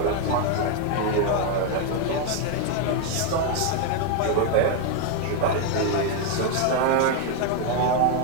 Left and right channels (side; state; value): both; different; correlation 0.01